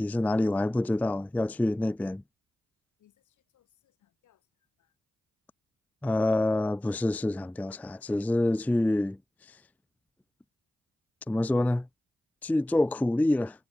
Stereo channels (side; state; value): both; normal; correlation 0.98